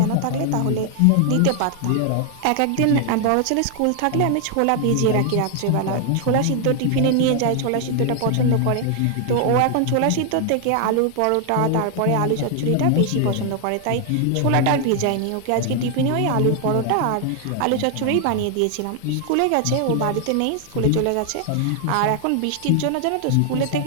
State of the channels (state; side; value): different; both; correlation 0.00